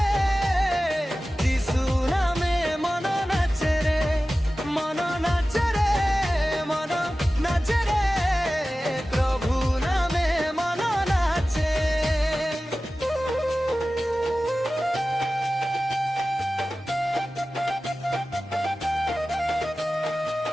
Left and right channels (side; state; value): both; normal; correlation 0.95